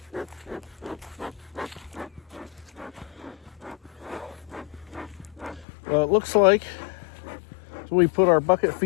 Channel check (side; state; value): right; drops out; at 5.7 s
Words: Well, it looks like, so we put our bucket